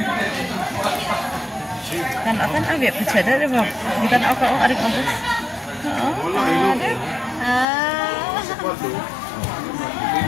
Kan akan agak pecada deh bang. Kita nak apa arik aku.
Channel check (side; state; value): right; drops out; at 7.7 s